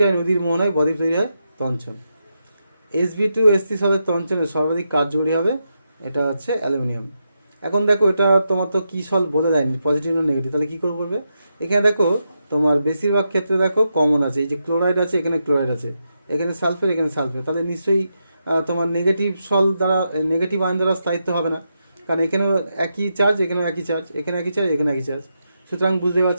নদীর মোহনায় বদ্বীপ তৈরি হয়? তঞ্চন। Sb2 সলের তঞ্চনে সর্বাধিক কার্যকরী হবে? এটা হচ্ছে অ্যালুমিনিয়াম। এখন দেখো এটা তোমার তো কি সল বলে দেয়নি পজিটিভ না নেগেটিভ, তাহলে কী করে করবে? এখানে দেখো তোমার বেশিরভাগ ক্ষেত্রে দেখো কমন আছে, এই যে ক্লোরাইড আছে, এখানে ক্লোরাইড আছে, এখানে সালফেট, এখানে সালফেট, তাহলে নিশ্চয়ই তোমার নেগেটিভ সল দ্বারা নেগেটিভ আয়ন দ্বারা স্থায়িত্ব হবে না, কারণ এখানেও একই চার্জ, এখানেও একই চার্জ, এখানে একই চার্জ, এখানে একই চার্জ, সুতরাং বুঝতে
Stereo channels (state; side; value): inverted; both; correlation -0.84